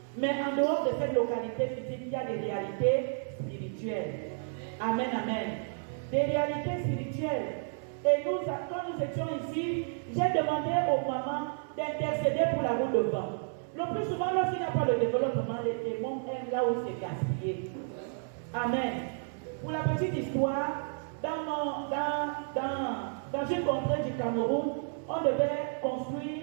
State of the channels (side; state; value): left; silent; 57 dB below the other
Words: Mais en dehors de cette localité physique, il y a des réalités spirituelles. Amen, amen. Des réalités spirituelles. Et nous, quand nous étions ici, j'ai demandé aux mamans d'intercéder pour la route de vent. Le plus souvent, lorsqu'il n'y a pas de développement, les démons aiment là où c'est gaspillé. Amen. Pour la petite histoire, dans une contrée du Cameroun, on devait